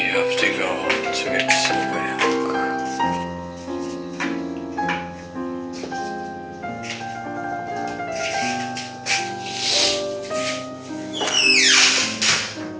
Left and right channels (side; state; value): both; identical; correlation 1.00